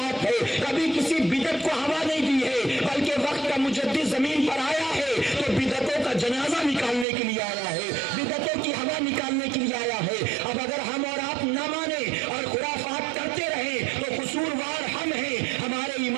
ہے، کبھی کسی بدعت کو ہوا نہیں دی ہے، بلکہ وقت کا مجدد زمین پر آیا ہے تو بدعتوں کا جنازہ نکالنے کے لیے آیا ہے، بدعتوں کی ہوا نکالنے کے لیے آیا ہے۔ اب اگر ہم اور آپ نہ مانیں اور خرافات کرتے رہیں تو قصوروار ہم ہیں، ہمارے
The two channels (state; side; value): drops out; left; at 7.1 s